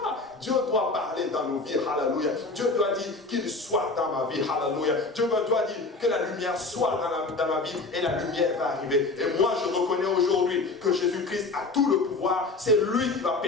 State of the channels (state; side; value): quieter; right; 3.5 dB